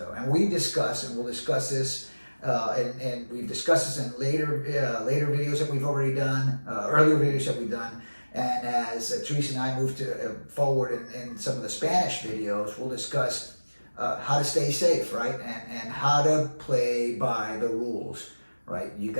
and we discuss, and we'll discuss this, and we've discussed this in later videos that we've already done, earlier videos that we've done. And as Teresa and I move to forward in some of the Spanish videos, we'll discuss how to stay safe, right, and how to play by the rules, right. You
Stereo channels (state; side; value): inverted; both; correlation -1.00